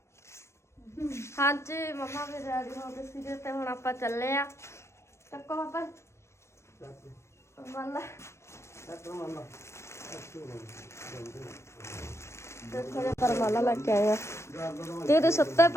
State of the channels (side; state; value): right; late; 0.13 ms